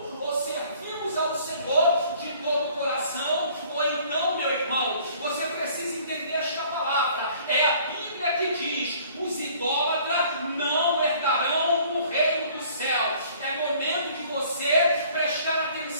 Ou servimos ao Senhor de todo o coração, ou então, meu irmão, você precisa entender esta palavra. É a Bíblia que diz: os idólatras não herdarão o reino do céu. É momento de você prestar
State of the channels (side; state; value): both; inverted; correlation -0.55